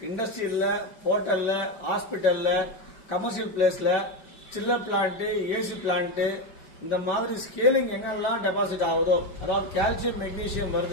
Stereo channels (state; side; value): late; right; 5.0 ms